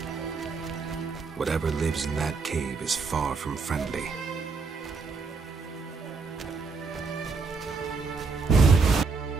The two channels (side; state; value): left; quieter; 4.6 dB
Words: Whatever lives in that cave is far from friendly.